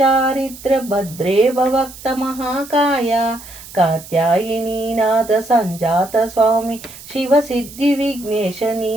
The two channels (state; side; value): noise; right; hiss, 17 dB below the sound